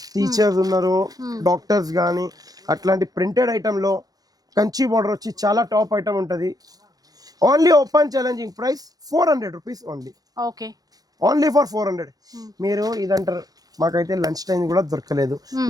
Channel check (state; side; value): late; left; 0.18 ms